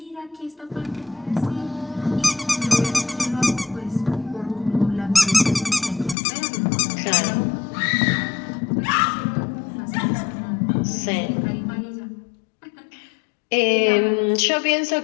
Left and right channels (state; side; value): drops out; right; at 6.2 s